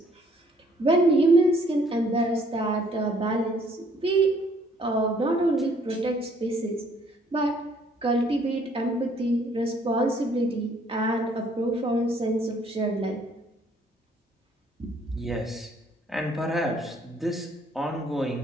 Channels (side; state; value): both; normal; correlation 0.63